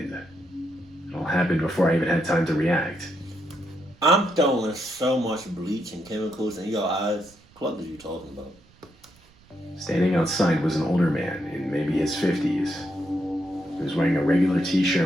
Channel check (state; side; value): noise; right; rumble, 28 dB below the sound